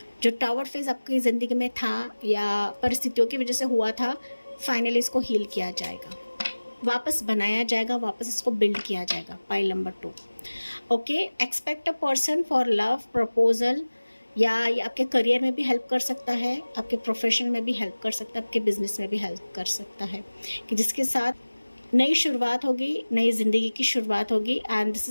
जो टावर फेज आपकी ज़िंदगी में था या परिस्थितियों की वजह से हुआ था, फाइनली इसको हील किया जाएगा, वापस बनाया जाएगा, वापस इसको बिल्ड किया जाएगा। Pile number 2। Okay, expect a person for love proposal, या ये आपके करियर में भी हेल्प कर सकता है, आपके प्रोफेशन में भी हेल्प कर सकता है, आपके बिजनेस में भी हेल्प कर सकता है, कि जिसके साथ नई शुरुआत होगी, नई ज़िंदगी की शुरुआत होगी। And this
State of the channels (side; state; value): both; inverted; correlation -1.00